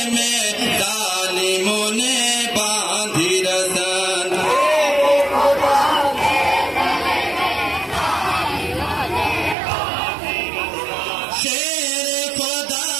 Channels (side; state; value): left; drops out; at 9.6 s